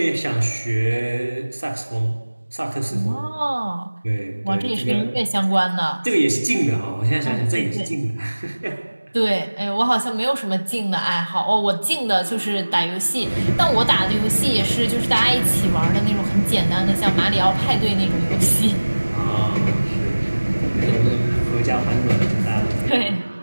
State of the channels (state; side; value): inverted; both; correlation -1.00